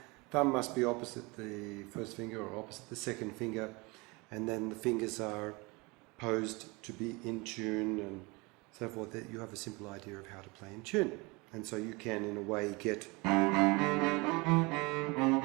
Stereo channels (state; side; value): quieter; left; 26.1 dB